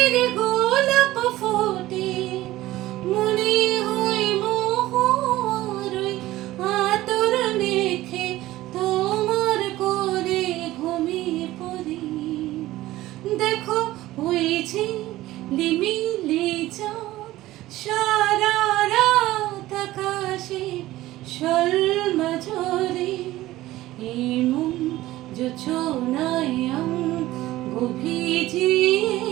গোলাপ ফোটে। মনে হয় মোহর ওই আতর মেখে তোমার কোলে ঘুমিয়ে পড়ি। দেখো হয়েছে লিমিলি চাঁদ সারা রাত আকাশে শোলমা ঝরে। এই মন যোজনায় অঙ্গ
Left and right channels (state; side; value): quieter; left; 16.4 dB